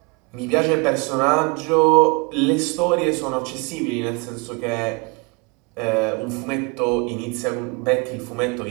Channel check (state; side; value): quieter; left; 29.8 dB